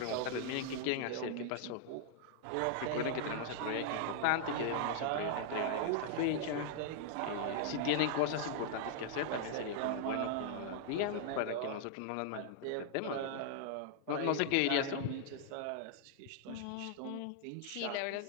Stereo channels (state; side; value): different; both; correlation -0.01